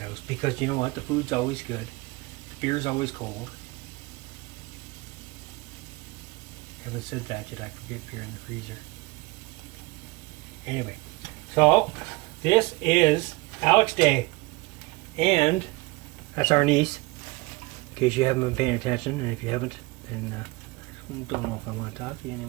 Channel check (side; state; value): left; quieter; 23.2 dB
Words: because you know what? The food's always good. The beer's always cold. Haven't said that yet. I forget beer in the freezer. Anyway, so this is Alex Day, and that's our niece. In case you haven't been paying attention, and if you haven't, then I don't know if I want to talk to you